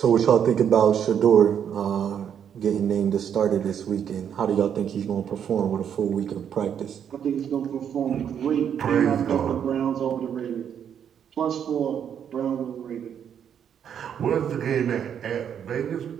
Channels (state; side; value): quieter; left; 8.5 dB